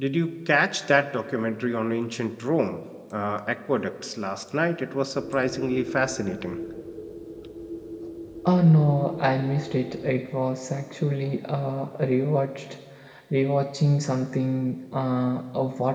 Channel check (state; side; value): identical; both; correlation 1.00